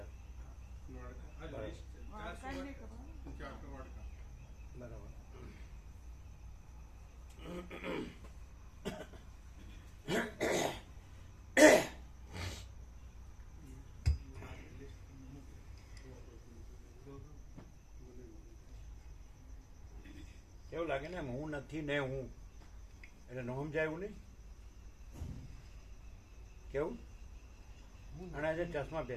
બરાબર. કેવું લાગે ને હું નથી ને હું એટલે ન સમજાય એવું નહીં. કેવું અને આજે ચશ્મા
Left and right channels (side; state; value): both; identical; correlation 1.00